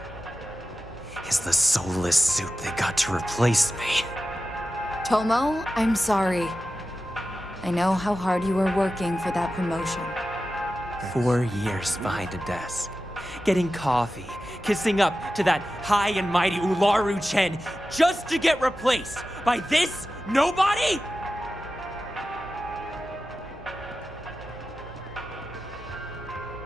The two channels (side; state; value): both; normal; correlation 0.93